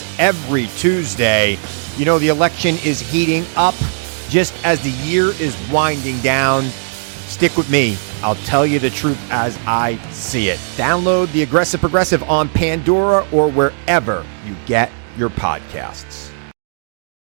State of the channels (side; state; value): left; silent; digital silence